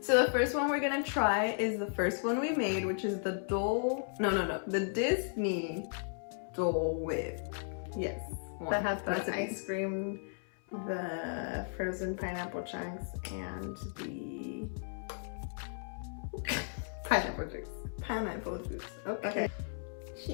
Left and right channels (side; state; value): right; silent; 54 dB below the other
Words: So the first one we're gonna try is the first one we made, which is the the Disney Dole Whip. Yes, that has the ice cream, the frozen pineapple chunks, and the pineapple juice. Pineapple juice. Okay.